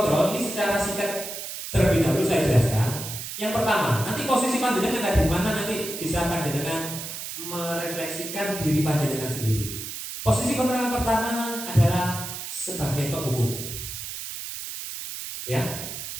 ini secara singkat terlebih dahulu saya jelaskan. Yang pertama, nanti posisi panjenengan ada di mana, nanti bisa panjenengan merefleksikan diri panjenengan sendiri. Posisi kontrol yang pertama adalah sebagai penghukum. Ya,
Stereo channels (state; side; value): noise; right; hiss, 8 dB below the sound